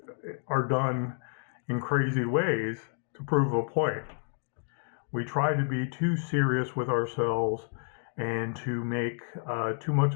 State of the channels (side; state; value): right; silent; 58 dB below the other